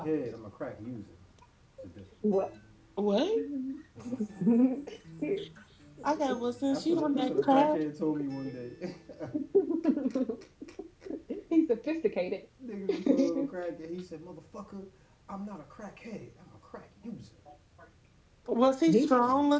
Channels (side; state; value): both; identical; correlation 1.00